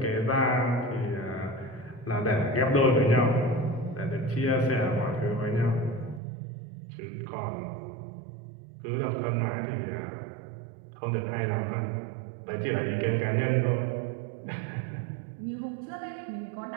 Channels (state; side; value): drops out; left; at 6.2 s